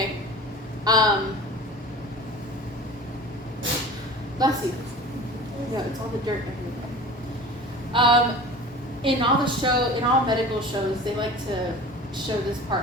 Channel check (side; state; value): both; normal; correlation 0.38